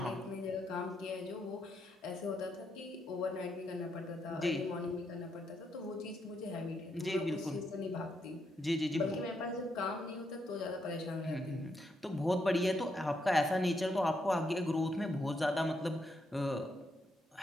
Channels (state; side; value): normal; both; correlation 0.79